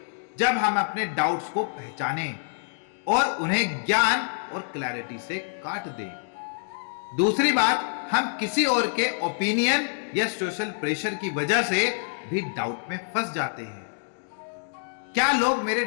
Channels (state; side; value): silent; right; digital silence